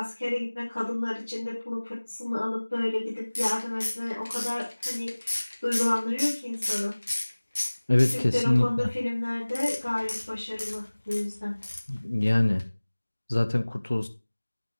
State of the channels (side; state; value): both; inverted; correlation -1.00